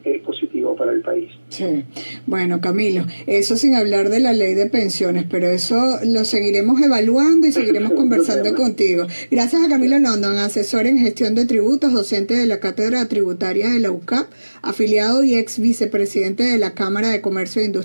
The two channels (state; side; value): inverted; both; correlation -1.00